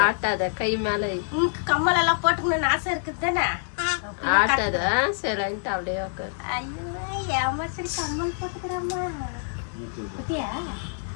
ಆಟದ ಕೈ ಮೇಲೆ ಕಮ್ಮಲೆಲ್ಲ ಪೋಟ್ಕೊಂಡು ಆಸೆ இருக்குதானே ஆட்டத சைலண்ட் அப்படியே உட்கார். ஐயோ ஏமாச்சல் கம்மல் போட்டுக்கறம்மா. குட்டியா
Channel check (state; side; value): silent; right; digital silence